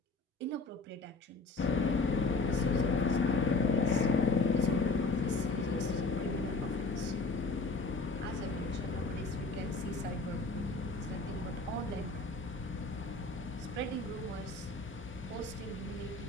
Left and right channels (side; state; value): right; quieter; 3.7 dB